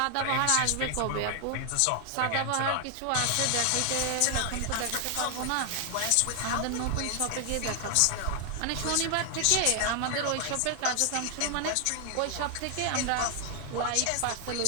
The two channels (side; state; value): both; different; correlation 0.00